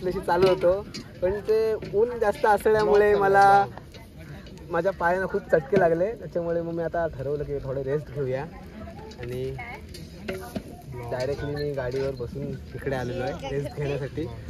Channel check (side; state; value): both; identical; correlation 1.00